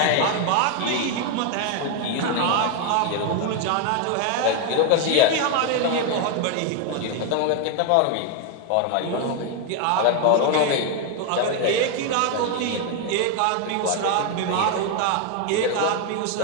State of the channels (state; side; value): different; both; correlation 0.01